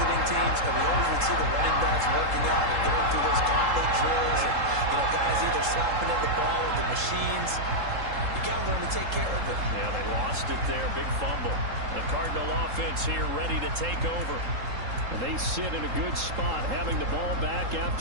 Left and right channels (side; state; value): left; late; 3.7 ms